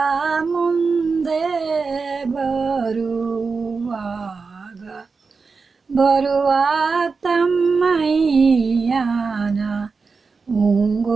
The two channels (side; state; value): left; quieter; 4.7 dB